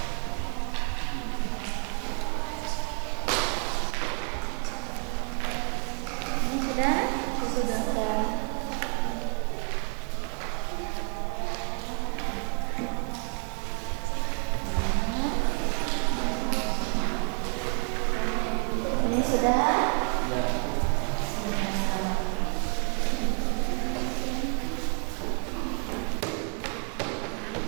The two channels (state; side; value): quieter; left; 39.3 dB